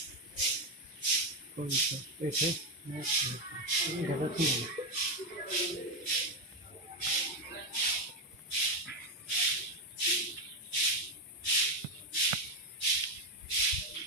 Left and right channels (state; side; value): normal; both; correlation 0.08